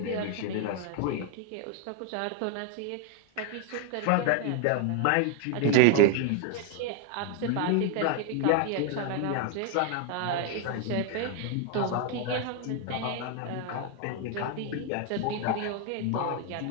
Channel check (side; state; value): both; different; correlation 0.01